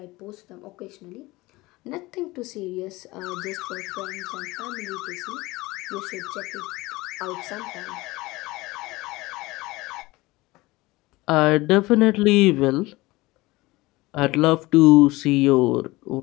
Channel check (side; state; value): right; quieter; 20.7 dB